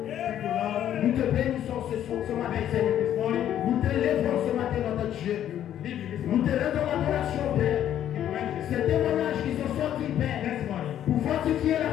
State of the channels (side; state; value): right; quieter; 10.9 dB